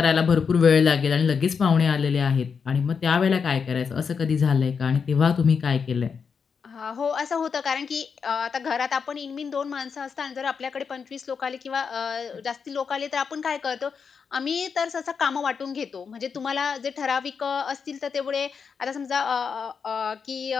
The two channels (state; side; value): quieter; right; 6.0 dB